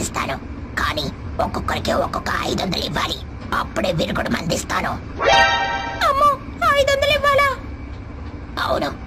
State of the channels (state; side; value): identical; both; correlation 1.00